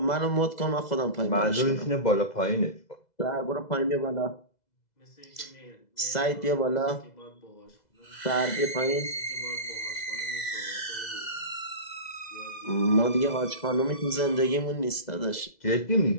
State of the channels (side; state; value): right; late; 2.0 ms